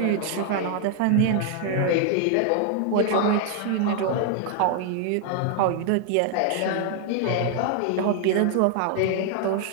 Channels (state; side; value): different; both; correlation 0.00